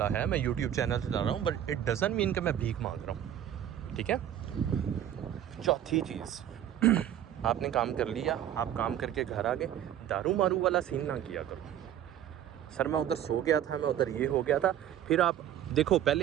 है, मैं यूट्यूब चैनल से ला रहा हूँ, बट इट डजंट मीन कि मैं भीख मांग रहा हूँ, ठीक है। चौथी चीज़, आपने काम कर लिया, आप काम करके घर आ गए, दारू मारू वाला सीन ना किया करो। सर मैं उधर सो गया था, मैं उधर ये हो गया था। फिर आप देखो,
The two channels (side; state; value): left; quieter; 10.8 dB